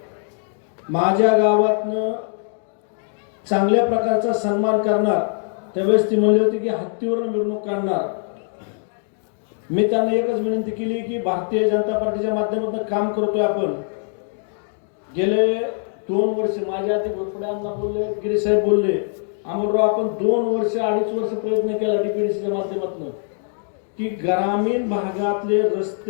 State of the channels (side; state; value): right; silent; 58 dB below the other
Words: माझ्या गावातनं चांगल्या प्रकारचा सन्मान करणार। त्यावेळेस ती म्हणली होती की हत्तीवरून मिरवणूक काढणार। मी त्यांना एकच विनंती केली की भारतीय जनता पार्टीच्या माध्यमातून काम करतोय आपण। गेले 2 वर्ष माझ्या आधी घोरपड्यांना बोलले, गिरी साहेब बोलले, अमरराव आपण 2 वर्ष 2.5 वर्ष प्रयत्न केला डीपीडीसीच्या माध्यमातून की ग्रामीण भागातले